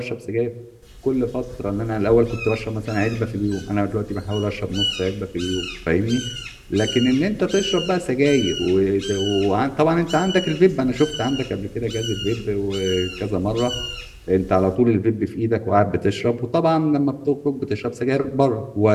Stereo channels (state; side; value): identical; both; correlation 1.00